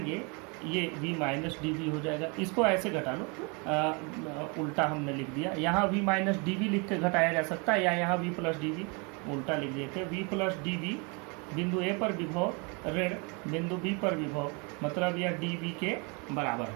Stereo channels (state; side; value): quieter; left; 32.3 dB